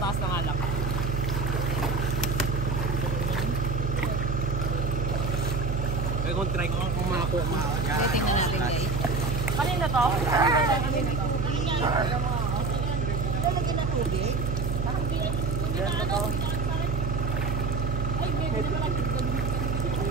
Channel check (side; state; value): right; noise; hum, 1 dB below the sound